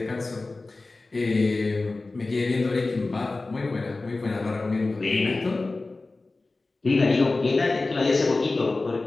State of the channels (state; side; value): quieter; right; 3.4 dB